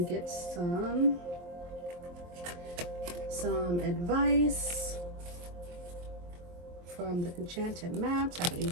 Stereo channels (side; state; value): left; late; 23 ms